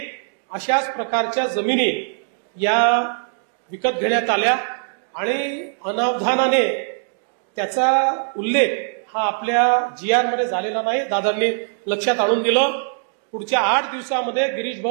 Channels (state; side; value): silent; left; digital silence